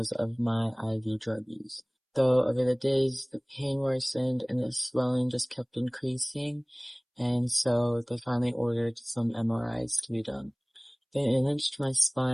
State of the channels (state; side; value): identical; both; correlation 1.00